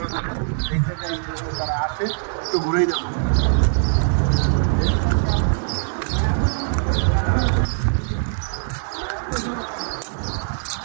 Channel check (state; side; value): silent; left; digital silence